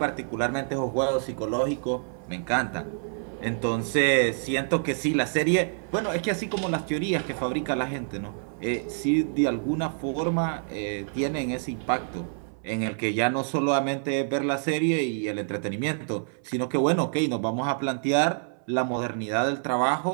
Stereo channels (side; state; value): left; silent; 60 dB below the other